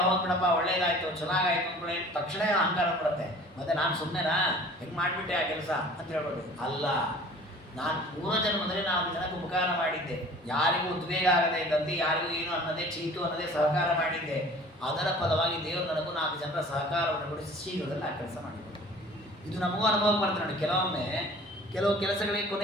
ಹೋಗ್ಬಿಡಪ್ಪ, ಒಳ್ಳೇದಾಯ್ತು ಚೆನ್ನಾಗಾಯ್ತು ಅಂದ್ಕೊಳ್ಳಿ, ತಕ್ಷಣ ಅಹಂಕಾರ ಬಿಡುತ್ತೆ. ಮತ್ತೆ ನಾನು ಸುಮ್ಮನೆನಾ ಹೆಂಗೆ ಮಾಡಿಬಿಟ್ಟೆ ಆ ಕೆಲಸ ಅಂತ ಹೇಳ್ಬೋದು. ಅಲ್ಲ, ನಾನು ಪೂರ್ವ ಜನ್ಮದಲ್ಲಿ ನಾನು ಜನಕ್ಕೆ ಉಪಕಾರ ಮಾಡಿದ್ದೆ, ಯಾರಿಗೂ ಉದ್ವೇಗ ಆಗದೆ ಇದ್ದಂತೆ, ಯಾರಿಗೂ ಏನು ಅನ್ನದೇ ಚೀಟು ಅನ್ನದೇ ಸಹಕಾರ ಮಾಡಿದ್ದೆ. ಅದರ ಫಲವಾಗಿ ದೇವರು ನನಗೂ 4 ಜನರ ಸಹಕಾರವನ್ನು ಕೊಡಿಸಿ ಶೀಘ್ರದಲ್ಲಿ ಆ ಕೆಲಸ ಮಾಡಿಕೊಟ್ಟು. ಇದು ನಮಗೂ ಅನುಭವ ಬರ್ತದೆ ನೋಡಿ. ಕೆಲವೊಮ್ಮೆ ಕೆಲವು ಕೆಲಸಗಳಿಗೆ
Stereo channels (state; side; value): normal; both; correlation 0.47